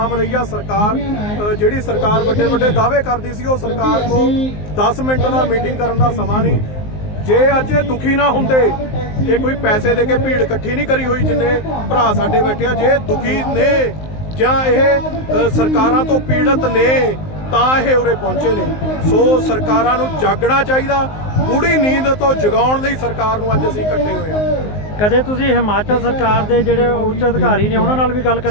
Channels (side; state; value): right; late; 19 ms